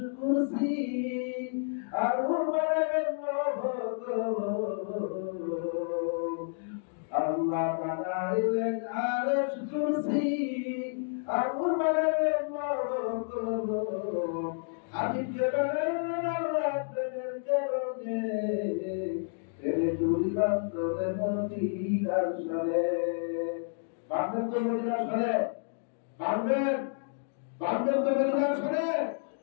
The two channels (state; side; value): silent; right; digital silence